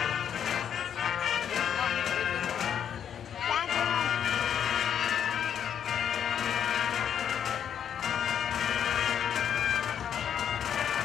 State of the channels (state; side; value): quieter; right; 8.8 dB